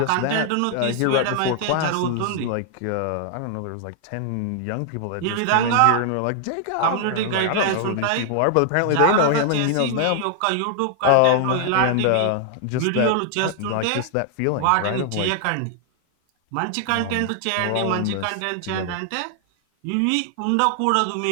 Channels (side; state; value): both; different; correlation 0.00